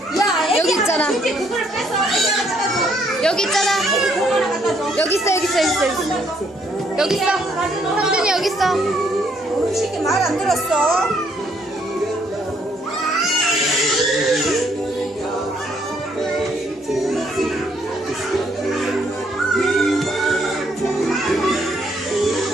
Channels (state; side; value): normal; both; correlation 0.69